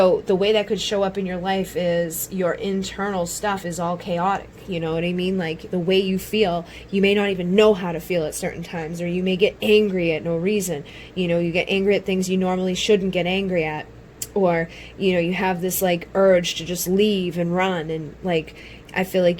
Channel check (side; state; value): both; identical; correlation 1.00